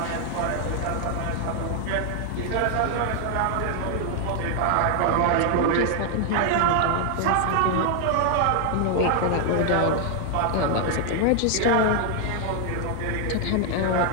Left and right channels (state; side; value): different; both; correlation 0.00